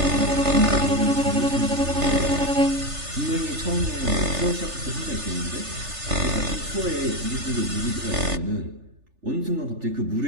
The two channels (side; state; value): left; late; 3.4 ms